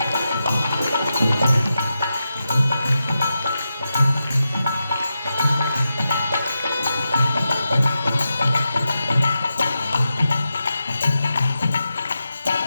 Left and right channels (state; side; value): inverted; both; correlation -0.89